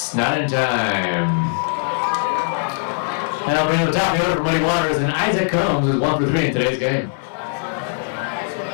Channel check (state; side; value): silent; right; digital silence